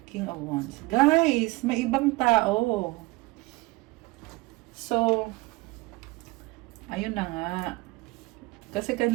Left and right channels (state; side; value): quieter; left; 23.2 dB